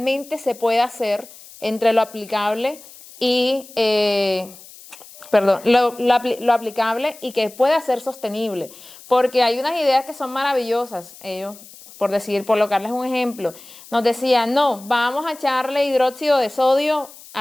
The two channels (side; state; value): left; noise; hiss, 20 dB below the sound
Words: se puede hacer, entre lo aplicable y, lo aplicable y que pueda ser sostenible, porque hay unas ideas que son maravillosas, ellos por colocarles un ejemplo, nos decían, no, vamos a echarle hidróxido de sodio